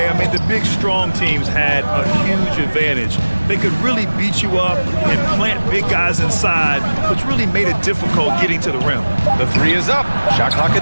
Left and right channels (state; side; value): inverted; both; correlation -1.00